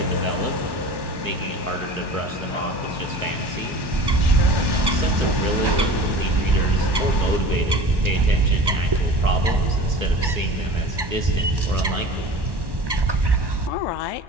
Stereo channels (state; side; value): late; left; 1.1 ms